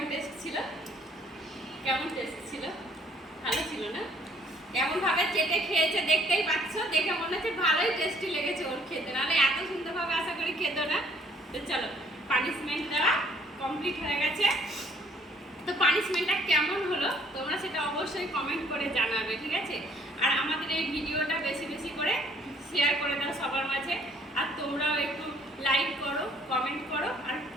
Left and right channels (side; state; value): both; normal; correlation 0.61